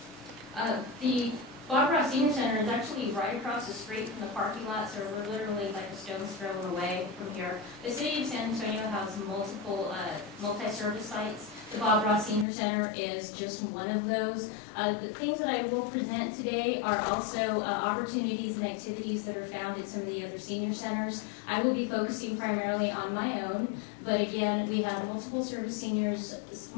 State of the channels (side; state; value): right; drops out; at 12.5 s